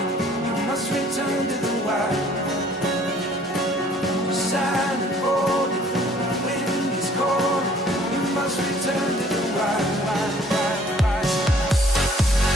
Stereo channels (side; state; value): both; normal; correlation 0.57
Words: You must return to the wild. You're silent, bold, the wind is cold. You must return to the wild.